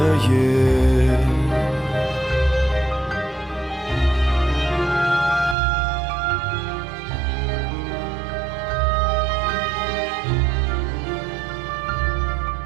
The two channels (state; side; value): drops out; left; at 5.6 s